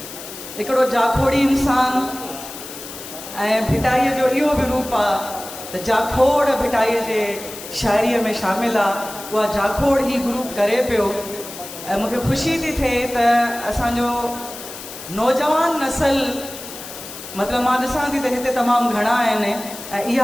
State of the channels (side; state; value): left; noise; hiss, 12 dB below the sound